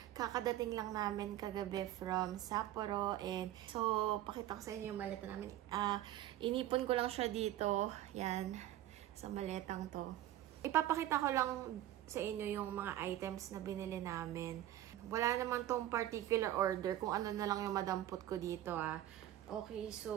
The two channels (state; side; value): quieter; left; 13.4 dB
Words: Kakadating lang namin kagabi from Sapporo and so pakita ko sa inyo yung maleta namin. Inipon ko lang siya dito, yan, sa maletang to. Ipapakita ko lang sa inyo yung mga items na binili namin. Wala naman tong particular order kung ano na lang yung madampot ko dito Okay,